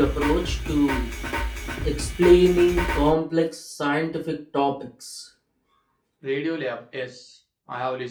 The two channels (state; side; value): identical; both; correlation 1.00